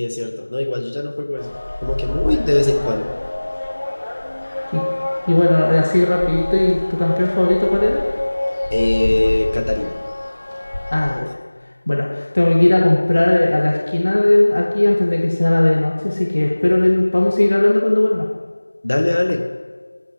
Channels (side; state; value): both; inverted; correlation -1.00